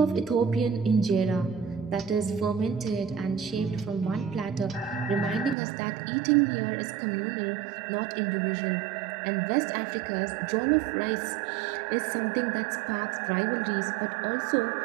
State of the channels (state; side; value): drops out; left; at 5.6 s